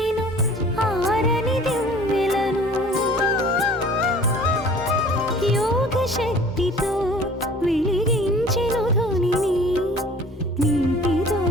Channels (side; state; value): both; normal; correlation 0.49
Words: ఆరని దివ్వెలను యోగ శక్తితో వెలిగించెను ధ్వనిని నీటితో